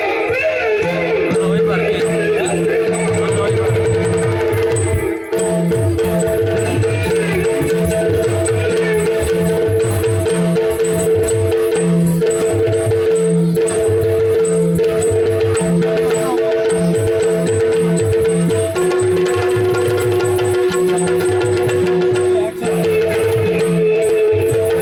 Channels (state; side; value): identical; both; correlation 1.00